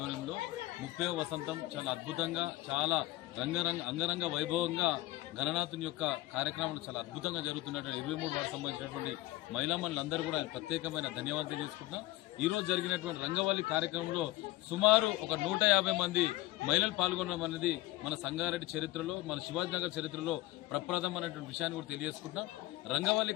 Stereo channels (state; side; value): quieter; right; 18.3 dB